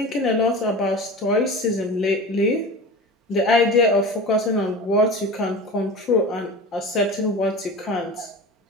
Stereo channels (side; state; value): both; normal; correlation 0.33